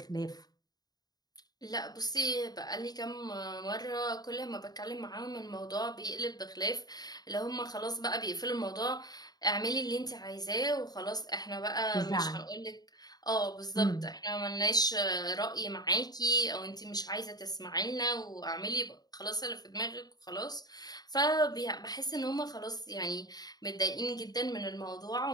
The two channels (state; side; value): late; right; 0.19 ms